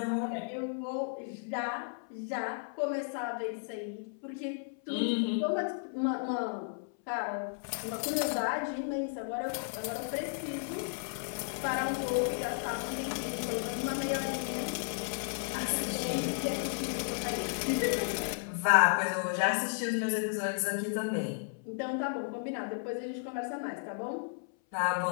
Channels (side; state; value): right; silent; 55 dB below the other